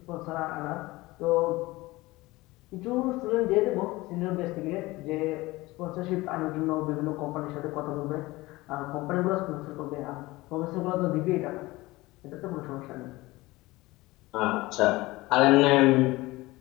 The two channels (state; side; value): quieter; right; 20.3 dB